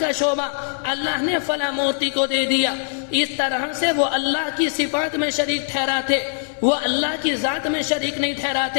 شعبہ اللہ نے فلاں مورتی کو دے دیا۔ اس طرح سے وہ اللہ کی صفات میں شریک ٹھہراتے، وہ اللہ کی ذات میں شریک نہیں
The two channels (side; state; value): right; silent; digital silence